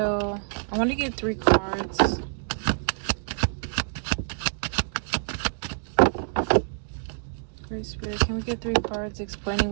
I want to get 3 cards. Great Spirit, can we get 3 cards explaining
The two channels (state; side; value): silent; left; digital silence